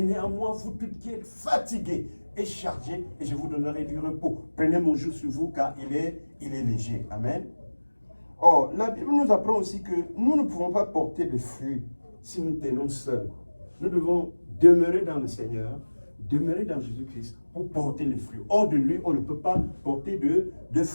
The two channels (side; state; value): both; inverted; correlation -1.00